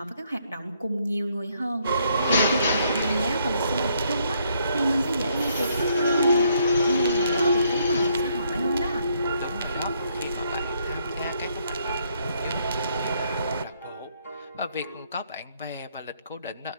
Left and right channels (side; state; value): both; inverted; correlation -0.71